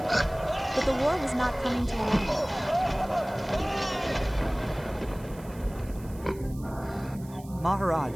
But the war was not coming to an end.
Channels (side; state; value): right; noise; hiss, 23 dB below the sound